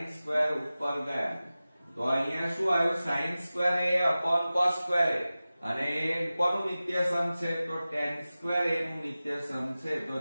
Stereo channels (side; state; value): both; inverted; correlation -0.96